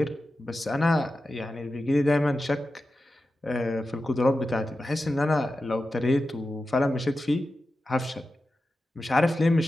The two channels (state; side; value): normal; both; correlation 0.92